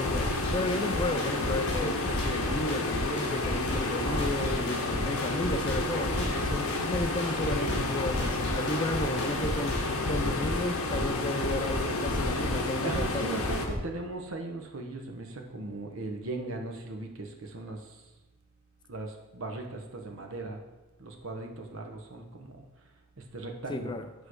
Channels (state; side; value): normal; both; correlation 0.37